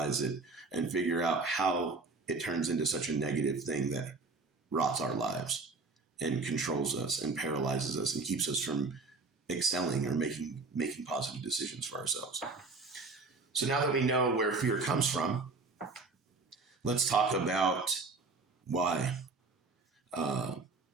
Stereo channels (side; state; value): left; quieter; 3.9 dB